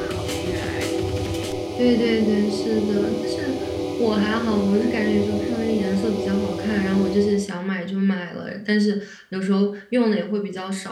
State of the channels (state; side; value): identical; both; correlation 1.00